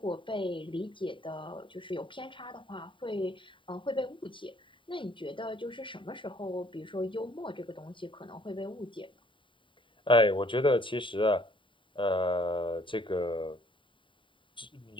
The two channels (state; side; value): late; right; 0.24 ms